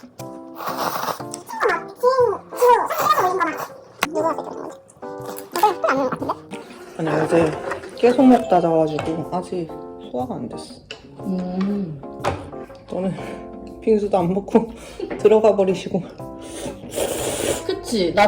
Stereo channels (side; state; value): both; identical; correlation 1.00